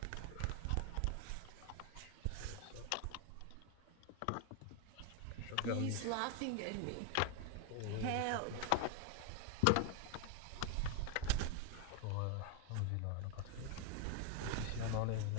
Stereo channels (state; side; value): different; both; correlation 0.01